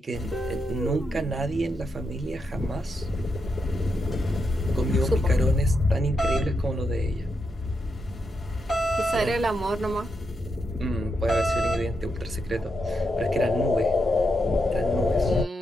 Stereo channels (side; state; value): both; normal; correlation 0.84